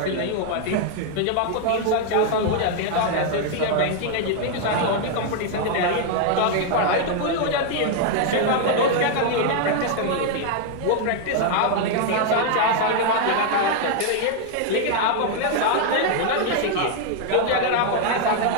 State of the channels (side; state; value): both; different; correlation 0.00